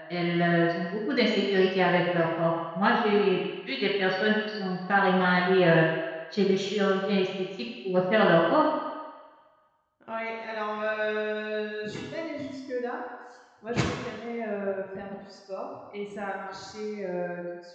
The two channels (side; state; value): both; identical; correlation 1.00